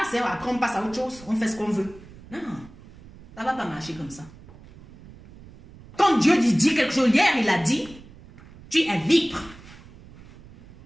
Hein. Après on passe à autre chose. On fait ce qu'on veut. Non, ça ne va pas marcher comme ça. Quand Dieu dit quelque chose, hier il a dit, tu es libre.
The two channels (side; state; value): right; noise; rumble, 21 dB below the sound